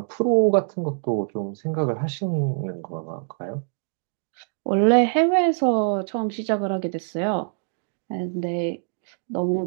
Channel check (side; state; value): left; silent; digital silence